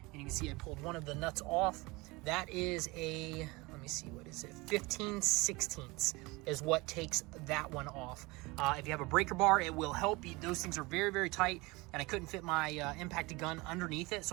And you can see I pulled one of the nuts off. That is a, let me see, what is it? 15/16 is what takes that one off. If you have a breaker bar, it will help you. Those things are very, very tight, and I couldn't fit my impacted gun underneath it,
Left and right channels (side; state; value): left; quieter; 23.7 dB